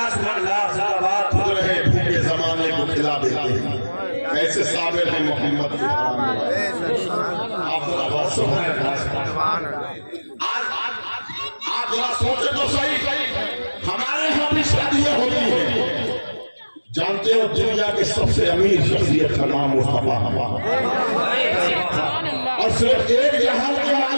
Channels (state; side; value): inverted; both; correlation -1.00